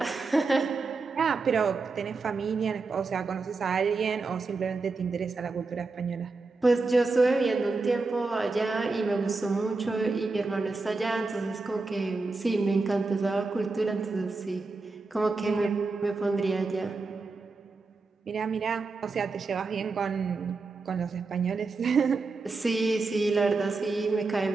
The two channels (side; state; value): left; quieter; 3.9 dB